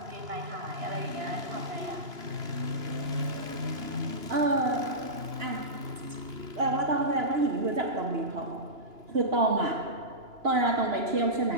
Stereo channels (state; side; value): late; left; 2.9 ms